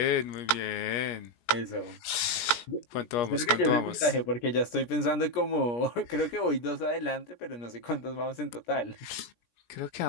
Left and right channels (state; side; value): late; right; 17 ms